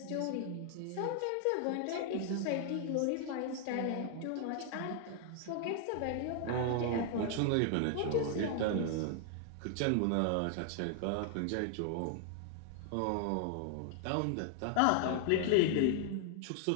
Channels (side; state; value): both; different; correlation 0.00